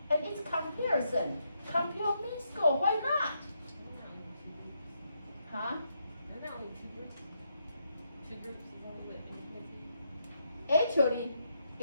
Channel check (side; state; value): both; inverted; correlation -0.79